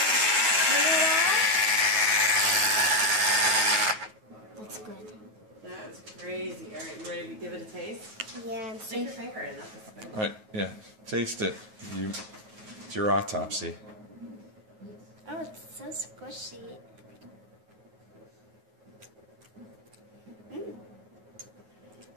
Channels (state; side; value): late; left; 9.4 ms